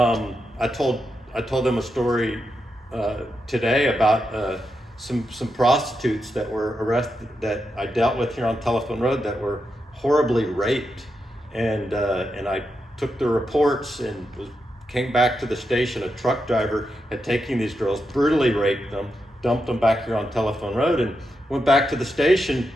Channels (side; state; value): both; normal; correlation 0.86